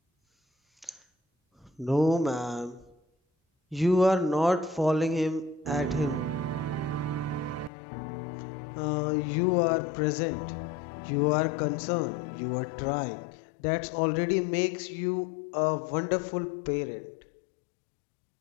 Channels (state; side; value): drops out; right; at 7.7 s